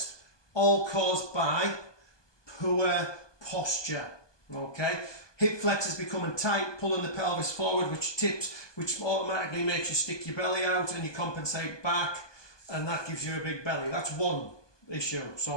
all caused by poor posture. Okay, hip flexors becoming tight, pulling the pelvis forward, which tips, which automatically makes you stick your belly out and you compensate back, and that gives you a big belly. That's one issue.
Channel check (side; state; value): right; late; 1.2 ms